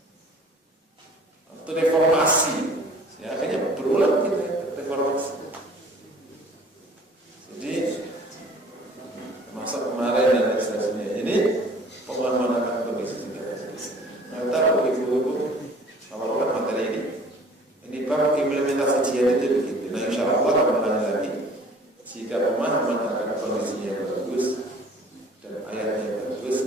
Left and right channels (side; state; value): both; normal; correlation 0.50